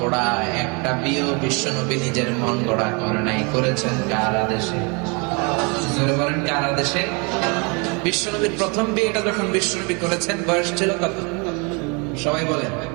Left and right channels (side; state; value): left; quieter; 31.5 dB